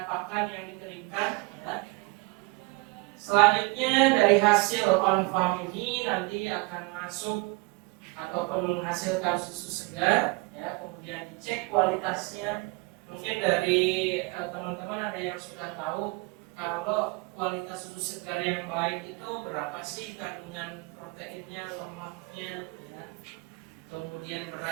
pakan yang dikeringkan ya. Selanjutnya dari hasil on farm ini nanti akan masuk ataupun menghasilkan susu segar ya, kemudian dicek kualitasnya. Mungkin dari teman-teman ada yang sudah tahu kalau kualitas susu segar yang baik itu berapa sih kandungan proteinnya, lemaknya ya. Kemudian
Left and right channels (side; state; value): left; quieter; 26.1 dB